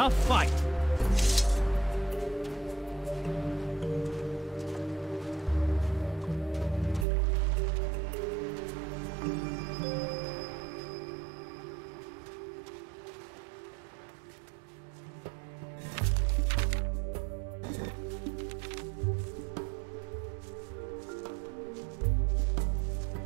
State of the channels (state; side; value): drops out; left; at 7.1 s